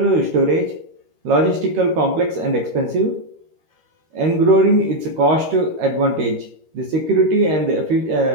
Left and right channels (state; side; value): late; left; 13 ms